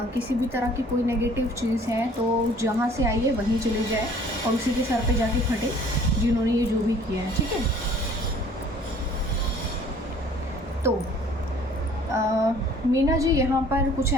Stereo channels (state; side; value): normal; both; correlation 0.53